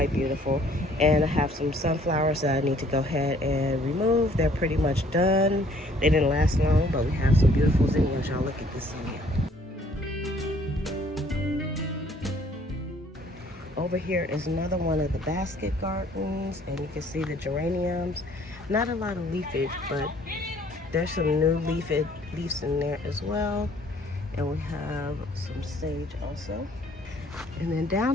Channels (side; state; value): both; normal; correlation 0.59